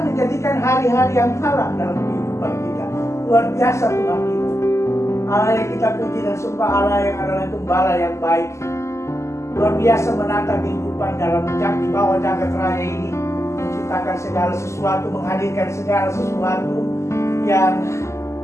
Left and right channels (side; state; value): right; late; 0.13 ms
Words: menjadikan hari-hari yang malang dalam kehidupan kita. Luar biasa Tuhan kita. Allah yang kita puji dan sembah, Allah yang adalah gembala yang baik. Luar biasa menata kehidupan di bawah jagat raya ini, menciptakan segala sesuatu, menghadirkan segala sesuatu yang